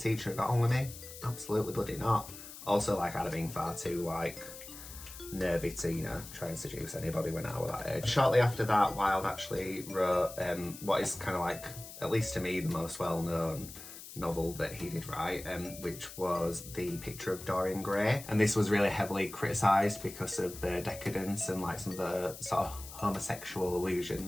have got on with me? Absolutely bloody not. Also, like, I'd have been far too like nervy to, you know, try and seduce anybody when I was that age. Shortly after that, Wilde actually wrote what is kind of like, at least to me, the most well-known novel that he did write, which was The Picture of Dorian Gray. And this was really heavily criticised because of the decadence and like some of the sort of homosexual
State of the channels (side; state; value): left; noise; hiss, 14 dB below the sound